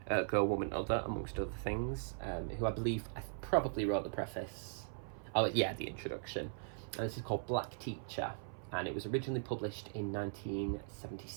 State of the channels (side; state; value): left; silent; 52 dB below the other